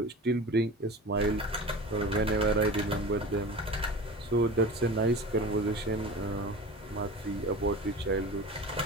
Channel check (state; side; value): normal; both; correlation 0.34